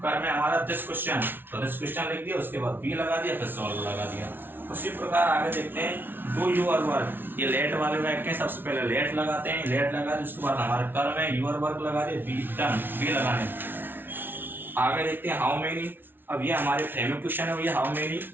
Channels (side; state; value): left; late; 0.10 ms